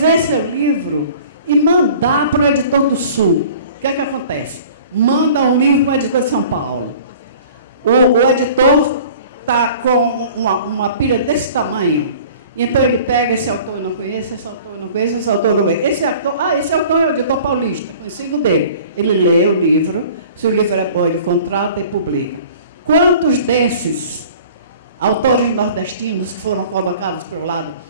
seu livro e mandar para o editor do Sul. O que é que acontece? Manda um livro para o editor de São Paulo. O editor está com uma pilha desse tamanho. Então ele pega esse autor, eu não conheço, esse autor, eu não conheço, esse autor, eu não conheço. Esse autor é o editor paulista, conhecido dele. Ele lê o livro, se o livro é bom, ele contrata e publica. Quantos desses autores nordestinos que foram colocados para o lado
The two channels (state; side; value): inverted; both; correlation -0.47